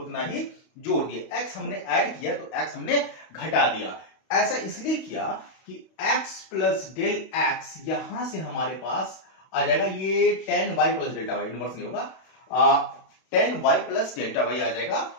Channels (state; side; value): late; right; 32 ms